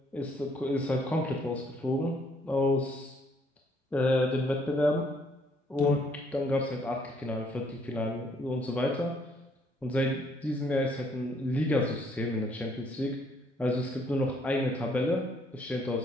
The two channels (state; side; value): normal; both; correlation 0.66